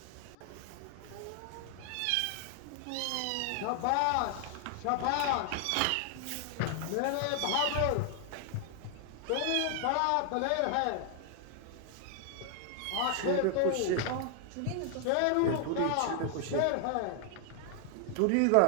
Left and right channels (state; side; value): different; both; correlation 0.00